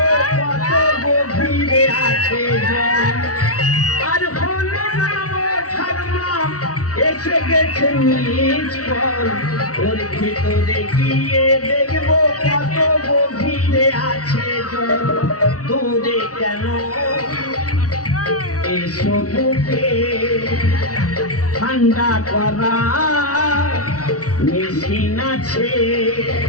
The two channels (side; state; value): right; late; 0.67 ms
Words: কত গভীরে আছে জল আর হলো না এসে গেছে নিজ পল ওর ভিতরে গিয়ে দেখবো কত গভীরে আছে জল দূরে কেন এসো বুকে ঠান্ডা করা মেশিন আছে